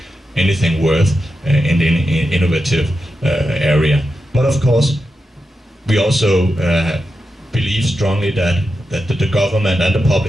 anything worth in the innovative area. But of course, we also believe strongly that the government and the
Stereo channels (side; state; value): both; normal; correlation 0.89